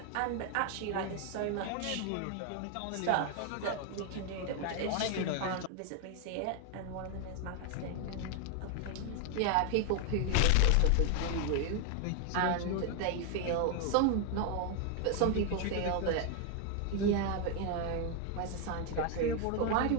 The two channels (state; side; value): different; both; correlation 0.01